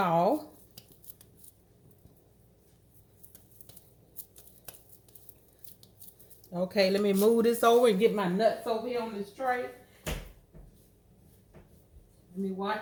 Okay, let me move this over and get my nuts over here on this tray. Let me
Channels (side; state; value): both; identical; correlation 1.00